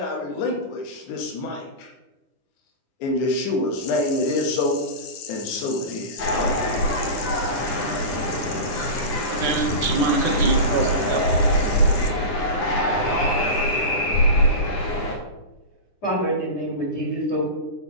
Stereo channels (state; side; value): late; right; 9.9 ms